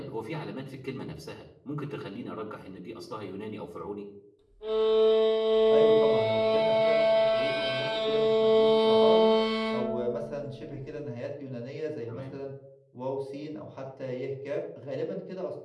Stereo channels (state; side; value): identical; both; correlation 1.00